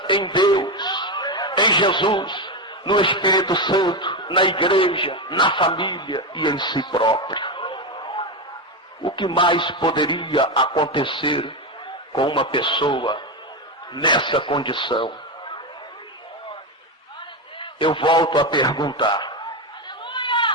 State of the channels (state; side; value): normal; both; correlation 0.13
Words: em Deus, em Jesus, no Espírito Santo, na igreja, na família e em si próprio. O que mais poderia acontecer com uma pessoa nessa condição? Eu volto a perguntar: